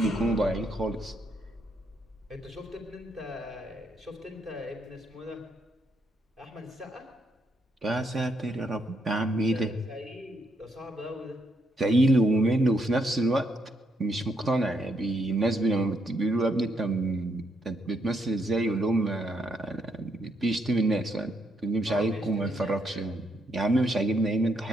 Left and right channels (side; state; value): both; normal; correlation 0.76